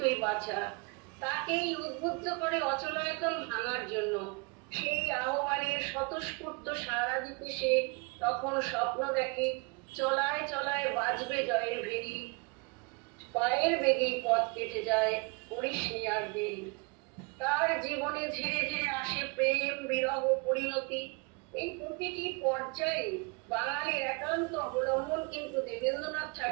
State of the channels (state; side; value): quieter; left; 30.3 dB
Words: বাঁচা, তাকেই উদ্বুদ্ধ করে অচলায়তন ভাঙার জন্য। সেই আহ্বানের স্বতঃস্ফূর্ত সাড়া দিতে সে তখন স্বপ্ন দেখে, চলায় চলায় বাজবে জয়ের ভেরি, পায়ের বেগেই পথ কেটে যায়, করিস নি আর দেরি। তার জীবনে ধীরে ধীরে আসে প্রেম, বিরহ, পরিণতি। এই প্রতিটি পর্যায়ে বাঙালির একান্ত অবলম্বন কিন্তু দেবেন্দ্রনাথ